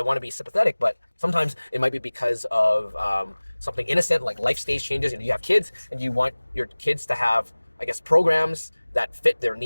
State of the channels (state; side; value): inverted; both; correlation -1.00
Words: want to be sympathetic, but sometimes it might be because of something innocent like life stage changes. You have kids and you want your kids to have, I guess, programs that fit their